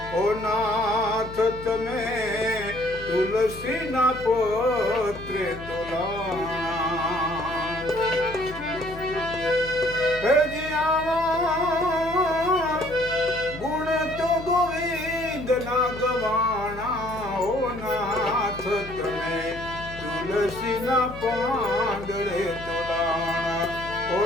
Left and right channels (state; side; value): noise; left; hum, 14 dB below the sound